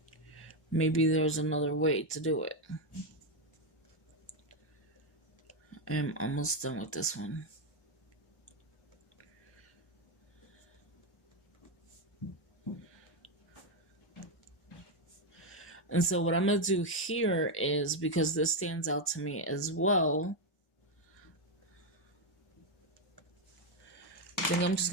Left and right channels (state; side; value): normal; both; correlation 0.04